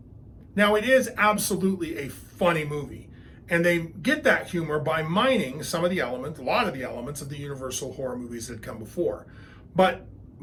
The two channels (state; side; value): identical; both; correlation 1.00